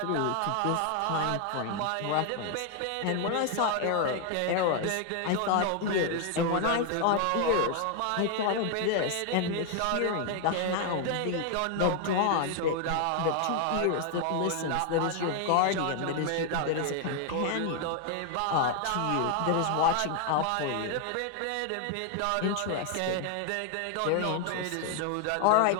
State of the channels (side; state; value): both; different; correlation 0.00